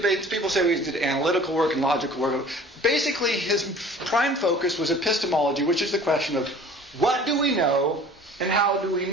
people say he did analytical work and logical work. Basically, his prime focus was epistemology, which is the question of what do we know and how do we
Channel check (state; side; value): normal; both; correlation 0.46